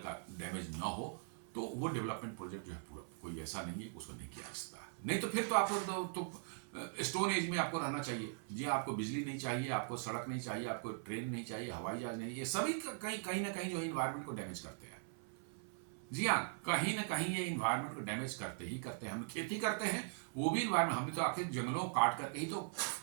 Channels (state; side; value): silent; left; 51 dB below the other